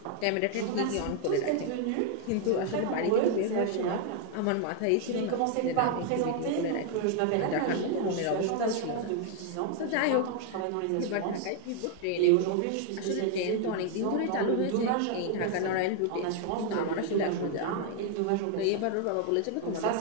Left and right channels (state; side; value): different; both; correlation 0.00